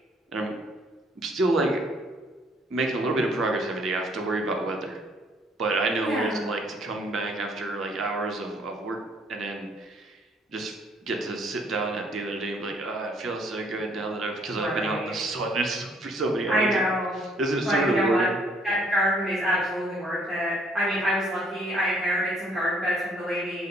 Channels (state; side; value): normal; both; correlation 0.63